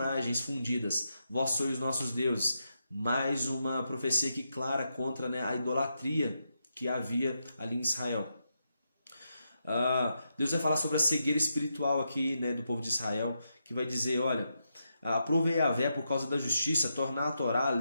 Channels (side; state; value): both; inverted; correlation -0.84